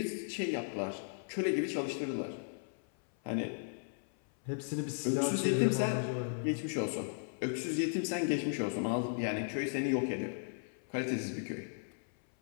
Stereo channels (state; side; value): silent; right; 54 dB below the other